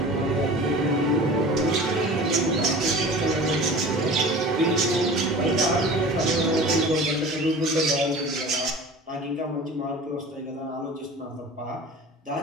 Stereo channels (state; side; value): normal; both; correlation 0.39